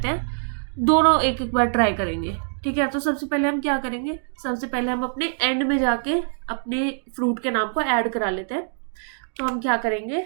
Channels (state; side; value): silent; left; digital silence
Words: हैं, दोनों एक एक बार ट्राई करेंगे, ठीक है। तो सबसे पहले हम क्या करेंगे, सबसे पहले हम अपने एंड में जाके अपने फ्रूट के नाम को ऐड करा लेते हैं। तो हम क्या करेंगे,